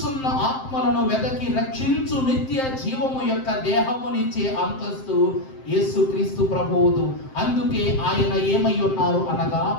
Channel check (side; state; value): right; late; 7.6 ms